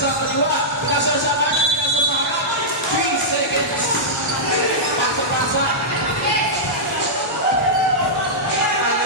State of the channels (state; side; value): normal; both; correlation -0.11